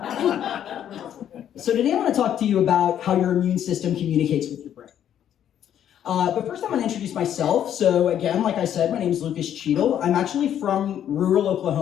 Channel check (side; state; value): right; quieter; 10.1 dB